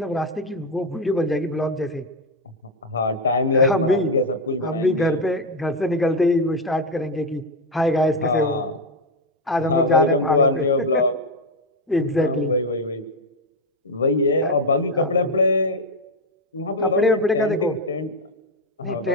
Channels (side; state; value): both; normal; correlation 0.07